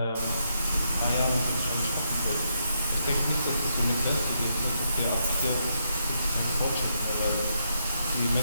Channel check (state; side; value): inverted; both; correlation -0.79